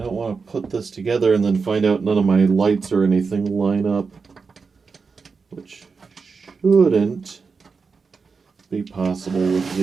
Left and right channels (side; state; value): left; quieter; 5.0 dB